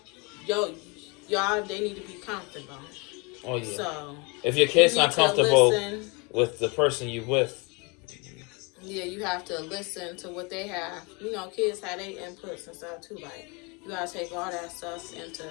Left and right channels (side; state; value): right; quieter; 30.0 dB